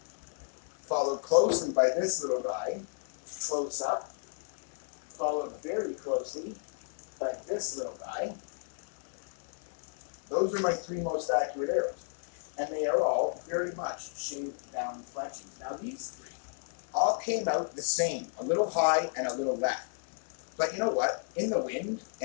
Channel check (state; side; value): silent; right; 56 dB below the other